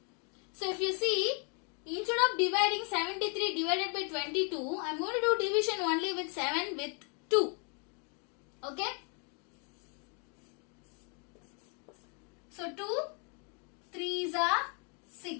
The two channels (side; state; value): right; quieter; 38.2 dB